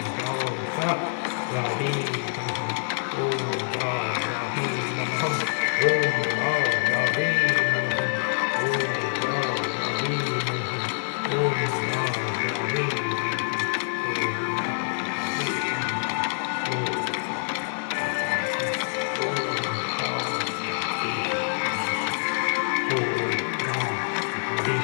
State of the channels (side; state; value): right; silent; digital silence